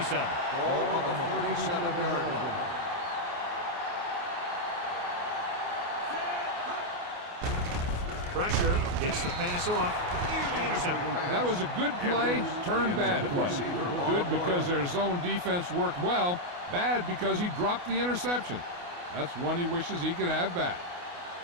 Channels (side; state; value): left; late; 28 ms